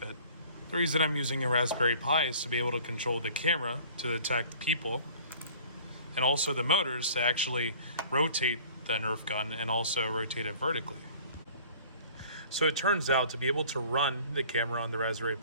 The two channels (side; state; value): both; inverted; correlation -0.49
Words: The reason I'm using a Raspberry Pi is to be able to control the camera to detect people, and also the motors to actually rotate the Nerf gun and also rotate it vertically. So it turns out to be able to run the camera on the Raspberry